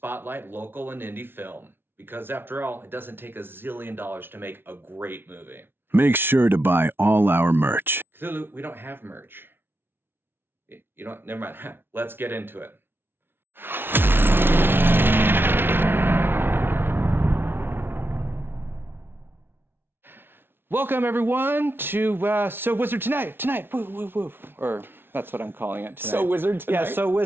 local and indie film. Because after all, it doesn't take $1 zillion to make a great movie. Make sure to buy all our merch. Cthulhu, we don't have merch. You know what? Never mind. Let's get into it. Welcome everyone to So Wizard Tonight. Woo, woo, woo. Or that's what I'm calling it tonight. So Wizard Tonight? Yeah, So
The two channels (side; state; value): left; late; 0.11 ms